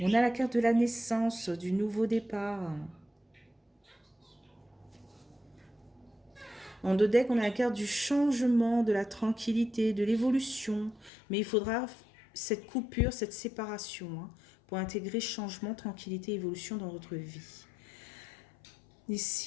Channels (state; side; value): drops out; right; at 11.1 s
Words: a la carte de la naissance, du nouveau départ. En deux decks, on a la carte du changement, de la tranquillité, de l'évolution. Mais il faudra cette coupure, cette séparation, hein, pour intégrer changement, tranquillité, évolution dans votre vie.